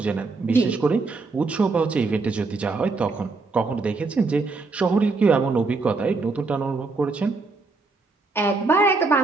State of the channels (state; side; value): quieter; left; 3.9 dB